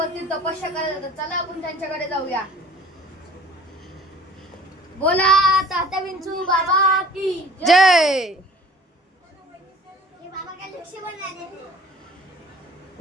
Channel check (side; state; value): both; normal; correlation 0.48